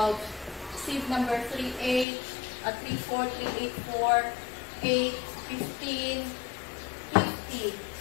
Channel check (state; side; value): drops out; right; at 2.1 s